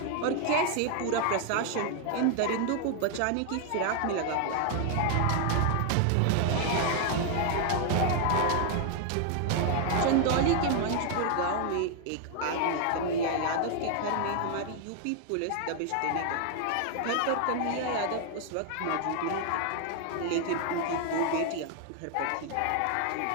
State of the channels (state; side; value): different; both; correlation 0.00